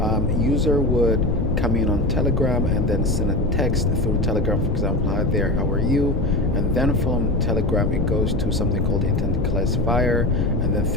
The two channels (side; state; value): left; noise; rumble, 1 dB below the sound